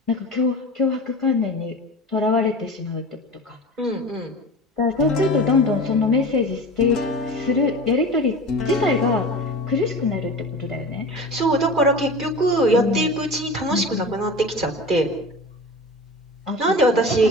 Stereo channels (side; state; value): both; normal; correlation 0.33